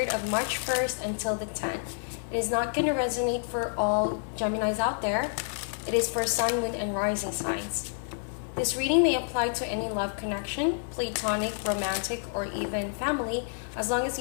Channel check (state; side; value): silent; right; digital silence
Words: of March 1st until the 10th. It is not going to resonate for all Geminis out there. It is for Sun, Moon, and Rising signs. This reading may apply to any love connection, platonic, romantic, or even family. As long as